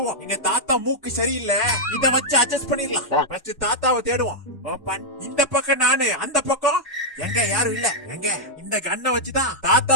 எங்க தாத்தா மூக்கு சரியில்லை, இத வச்சு அட்ஜஸ்ட் பண்ணிடலாம். ஃபர்ஸ்ட் தாத்தாவை தேடுவோம். ஓப்பன். இந்த பக்கம் நானு, அந்த பக்கம் எங்க யாரும் இல்ல. எங்க இந்த கண்ணை வச்சுதான்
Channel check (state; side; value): normal; both; correlation -0.05